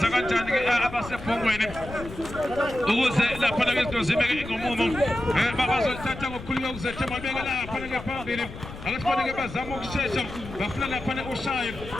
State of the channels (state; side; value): noise; left; rumble, 12 dB below the sound